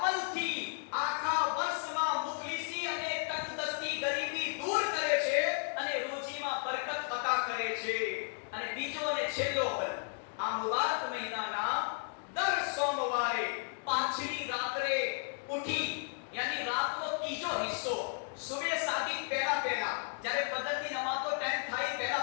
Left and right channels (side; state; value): right; silent; 55 dB below the other